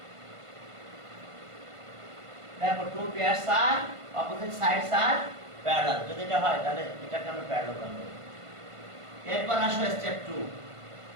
Therefore, two pairs are opposite sides are parallel. যদি এটা হয় তাহলে এটাকে আমরা parallelogram বলি। এরপর আসো স্টেপ 2।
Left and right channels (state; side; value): late; left; 1.5 ms